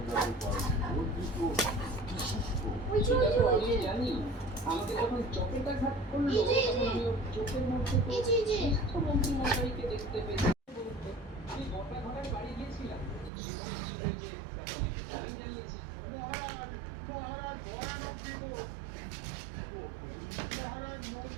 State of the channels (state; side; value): drops out; left; at 13.3 s